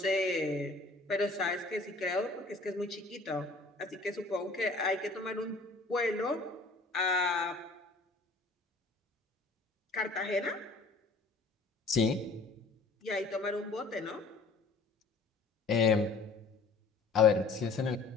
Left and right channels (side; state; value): right; quieter; 3.7 dB